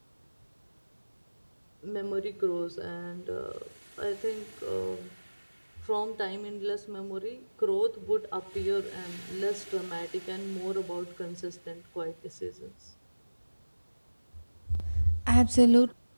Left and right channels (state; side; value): inverted; both; correlation -1.00